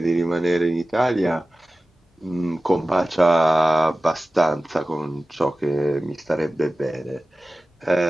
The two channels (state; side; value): normal; both; correlation 0.96